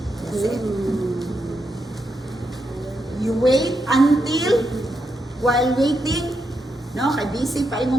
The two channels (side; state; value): both; normal; correlation 0.83